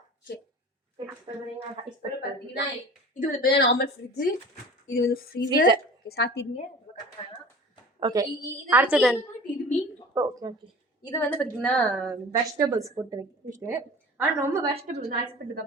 ஓகே, பார்த்தீங்கன்னா இது வந்து நார்மல் ஃப்ரிட்ஜு, இது வந்து ஃப்ரீசர். ஓகே, சாத்திடுங்க. ஓகே, அடுத்தது இது மீன். ஓகே ஓகே, இது வந்து பார்த்தீங்கன்னா வெஜிடபிள்ஸ் போட்டு வைக்கிட்டு. ஆனால் ரொம்ப வெஜிடபிள்ஸ் வந்து ஐஸ்பெட்டு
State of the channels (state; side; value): normal; both; correlation 0.40